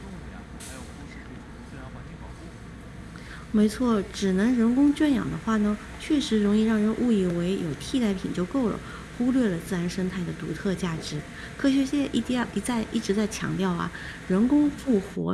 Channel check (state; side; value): identical; both; correlation 1.00